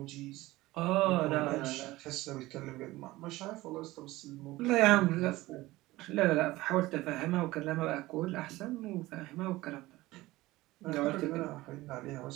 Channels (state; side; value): quieter; left; 18.6 dB